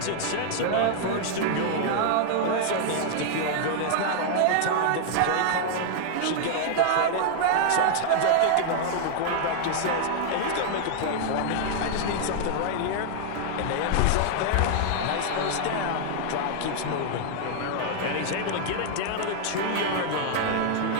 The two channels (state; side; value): different; both; correlation 0.00